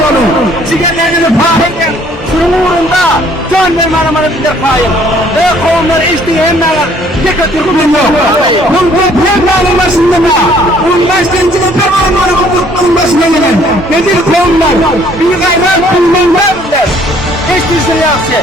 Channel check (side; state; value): both; normal; correlation 0.60